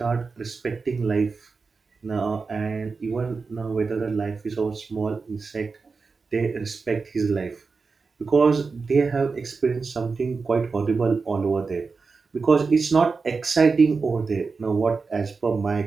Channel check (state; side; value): quieter; left; 4.6 dB